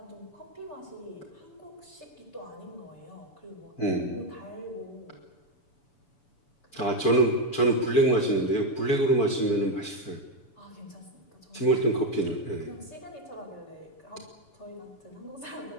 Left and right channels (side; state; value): right; late; 7.0 ms